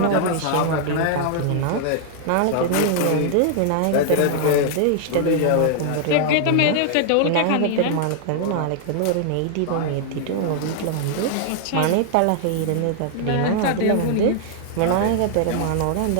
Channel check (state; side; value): different; both; correlation 0.00